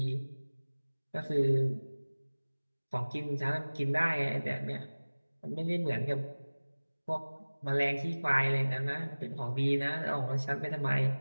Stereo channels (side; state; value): both; inverted; correlation -1.00